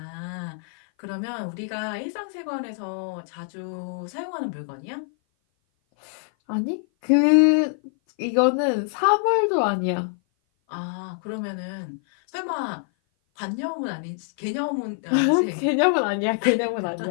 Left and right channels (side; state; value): right; silent; 56 dB below the other